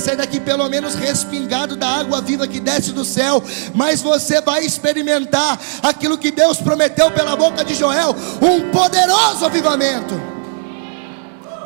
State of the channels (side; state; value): left; silent; digital silence